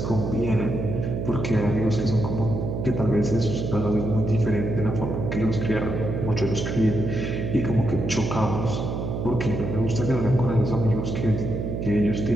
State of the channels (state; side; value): noise; right; hum, 3 dB below the sound